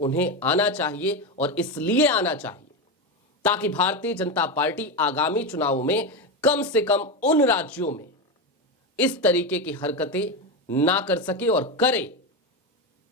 आना चाहिए, और इसलिए आना चाहिए ताकि भारतीय जनता पार्टी आगामी चुनावों में कम से कम उन राज्यों में इस तरीके की हरकतें ना कर सके, और करे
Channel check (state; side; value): normal; both; correlation 0.14